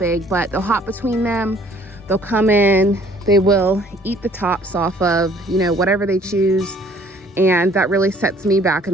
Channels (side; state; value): both; normal; correlation 0.57